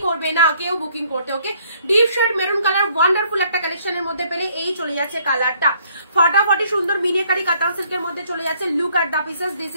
করবে না কেউ বুকিং করতে। Okay, deep shade maroon colour wonderful একটা কালেকশনের মধ্যে পেলে এই চলে যাচ্ছে কালারটা। ফটাফটি সুন্দর মিনিকারি কাতান সিল্কের মধ্যে চলে যাচ্ছে। Look at the pieces, this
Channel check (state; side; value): inverted; both; correlation -0.64